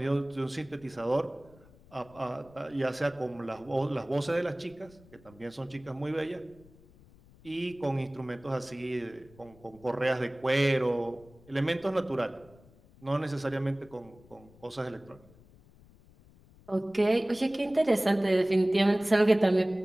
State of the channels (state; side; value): noise; left; rumble, 25 dB below the sound